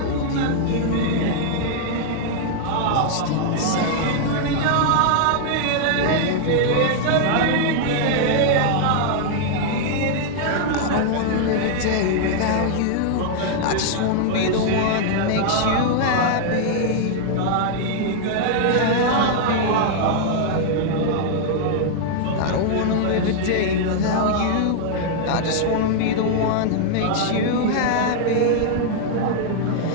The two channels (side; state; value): both; different; correlation -0.01